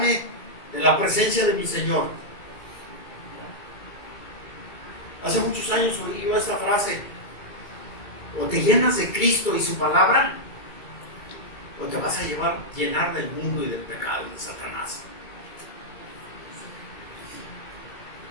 de la presencia de mi Señor. Hace muchos años oí yo esta frase: o te llenas de Cristo y su palabra, o te vas a llenar del mundo y del pecado y de Satanás.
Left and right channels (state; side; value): late; right; 2.3 ms